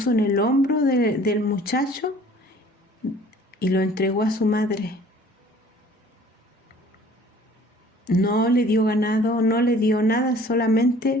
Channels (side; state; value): both; normal; correlation 0.51